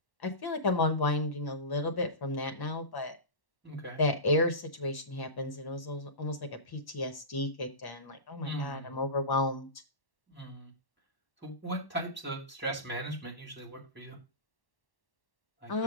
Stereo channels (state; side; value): late; right; 1.1 ms